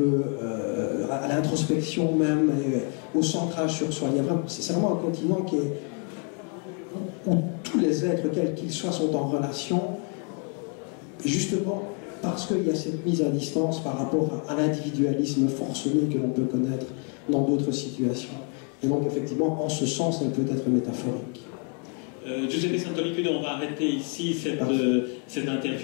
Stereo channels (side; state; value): right; quieter; 40.0 dB